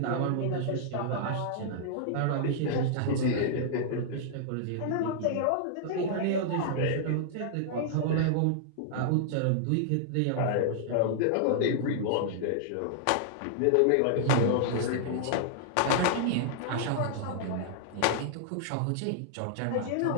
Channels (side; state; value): both; different; correlation -0.01